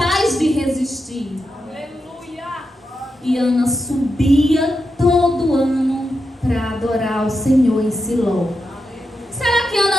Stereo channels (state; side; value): normal; both; correlation 0.87